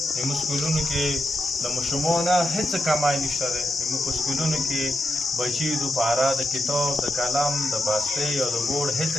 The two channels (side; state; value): both; normal; correlation 0.84